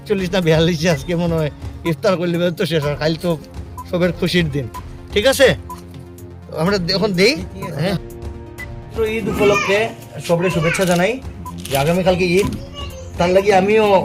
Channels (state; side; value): identical; both; correlation 1.00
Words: না 42 আজকে মনে হয় ইফতার করলে তো শেষ, আর কাল তো সবের খুশির দিন, ঠিক আছে? আমরা এখন দেই। হ্যাঁ, ঈদ উপলক্ষে সবরে শুভেচ্ছা জানাই যে আগামীকালকে ঈদ, তার লাগি আমিও